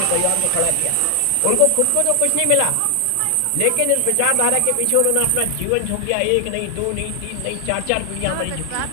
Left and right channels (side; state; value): both; different; correlation 0.00